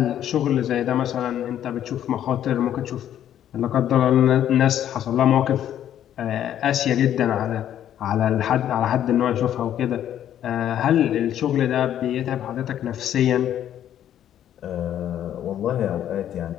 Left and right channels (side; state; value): right; quieter; 10.8 dB